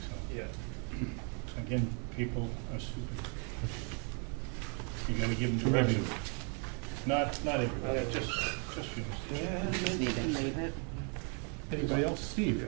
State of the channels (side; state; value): left; quieter; 38.6 dB